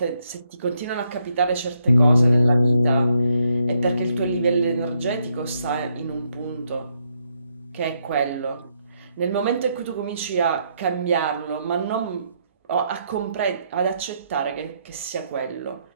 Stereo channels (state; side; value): inverted; both; correlation -0.76